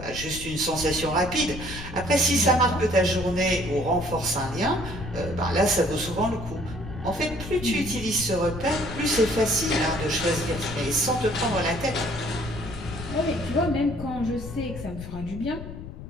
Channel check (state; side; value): noise; left; rumble, 10 dB below the sound